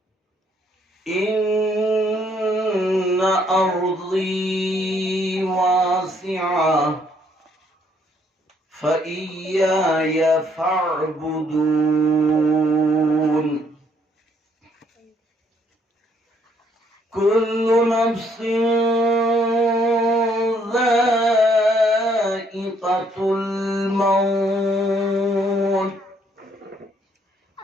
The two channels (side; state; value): both; normal; correlation 0.68